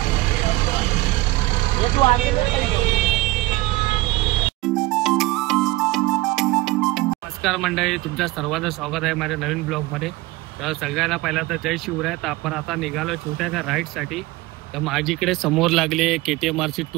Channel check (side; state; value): left; quieter; 20.1 dB